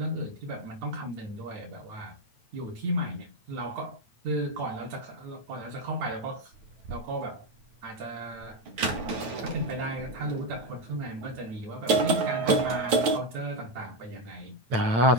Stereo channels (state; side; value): late; left; 9.4 ms